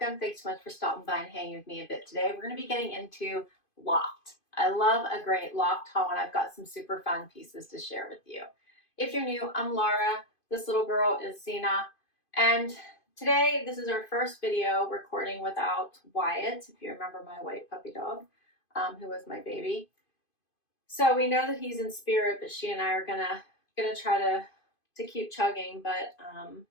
Thanks so much for stopping by and hanging with me a bit today. We're going to be getting into Loft. I love a great Loft haul, and I've got some super fun pieces to share with you. If you're new, I'm Laura. This little girl is Zena, and today this is our first video recording without Wyatt, if you remember my white puppy dog, who was my baby. So we know that he's in spirit, but she and I are gonna try to keep chugging, but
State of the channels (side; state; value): right; late; 2.5 ms